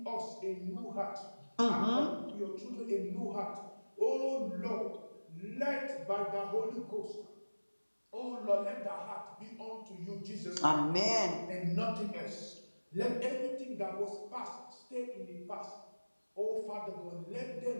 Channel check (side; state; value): both; inverted; correlation -1.00